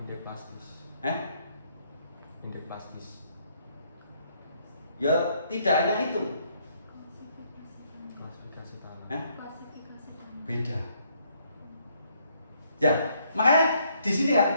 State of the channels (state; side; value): inverted; both; correlation -0.69